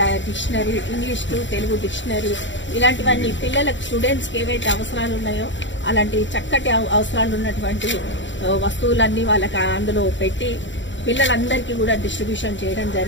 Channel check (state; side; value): late; right; 0.54 ms